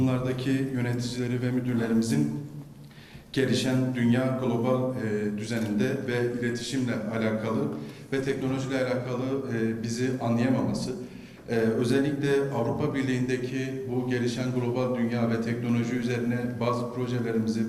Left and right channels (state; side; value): identical; both; correlation 1.00